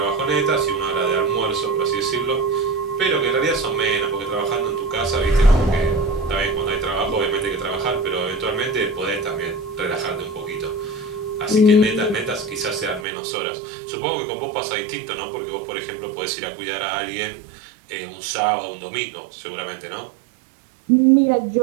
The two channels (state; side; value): drops out; left; at 13.1 s